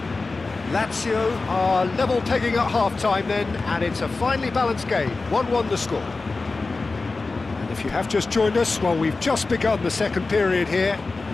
Lazio are level pegging at half-time then, and it's a finely balanced game. 1-1 the score. And the If you have just joined us, well, we've just begun the second period here.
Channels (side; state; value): right; quieter; 3.7 dB